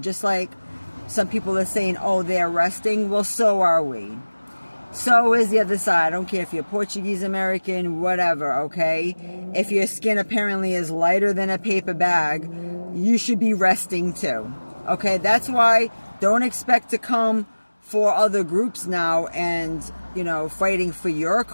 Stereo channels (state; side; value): inverted; both; correlation -1.00